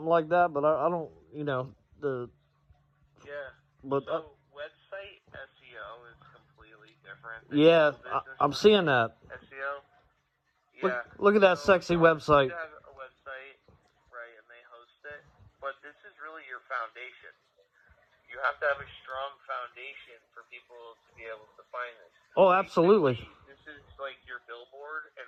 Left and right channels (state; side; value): identical; both; correlation 1.00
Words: like that. But I don't, But website SEO is completely different. Yeah, I'm seeing that. SEO. Yeah. Look at that sexy website. You have a website, right, and they host it, but this is really your foundation. You have to have a strong foundation for people to be able to find this. Oh, absolutely. This is like your billboard,